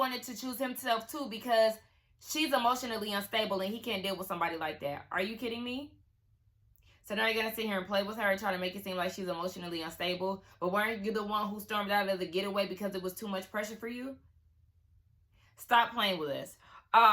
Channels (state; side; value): identical; both; correlation 1.00